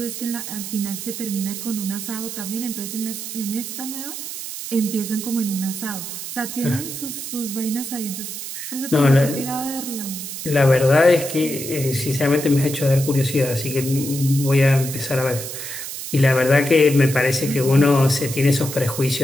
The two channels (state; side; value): noise; right; hiss, 8 dB below the sound